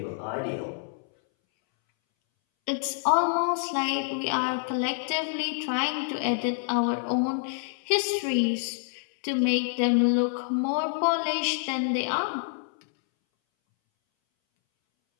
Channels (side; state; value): right; silent; 60 dB below the other